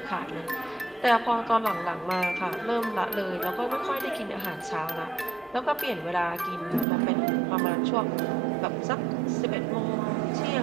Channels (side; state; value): left; drops out; at 6.9 s